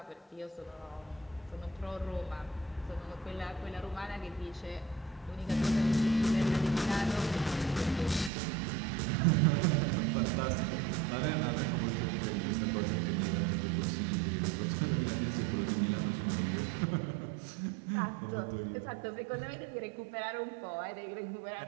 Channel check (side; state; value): left; drops out; at 8.3 s